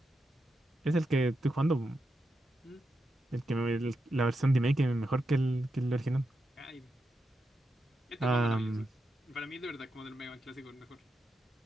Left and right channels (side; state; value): both; normal; correlation 0.86